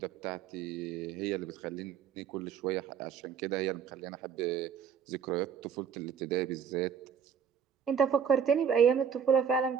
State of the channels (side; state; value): left; quieter; 7.4 dB